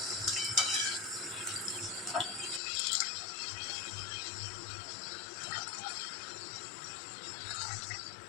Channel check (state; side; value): drops out; right; at 2.6 s